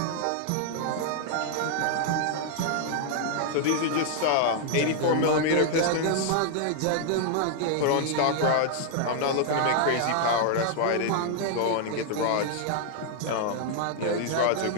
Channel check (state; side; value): different; both; correlation 0.00